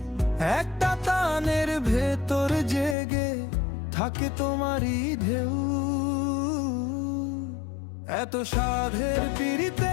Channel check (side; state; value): right; drops out; at 3.0 s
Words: একটা টানের ভেতর জেগে থাকে তোমারই ঢেউ। এত সাধের